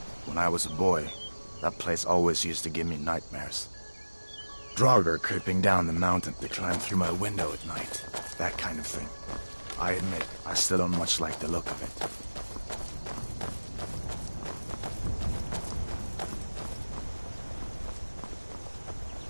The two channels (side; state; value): both; inverted; correlation -1.00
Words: When I was a boy, that place always used to give me nightmares. Draugr creeping down the mountain to climb through my window at night. That kind of thing. I admit, I still don't much like the look of it.